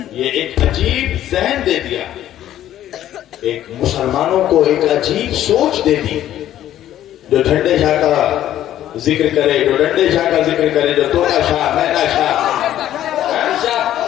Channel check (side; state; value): right; quieter; 12.2 dB